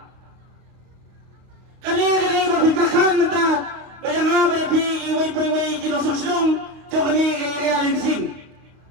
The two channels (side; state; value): left; late; 31 ms